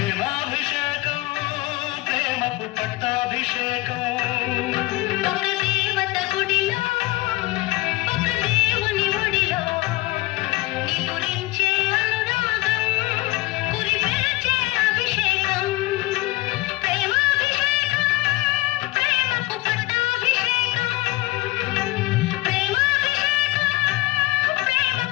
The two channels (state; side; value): quieter; right; 19.9 dB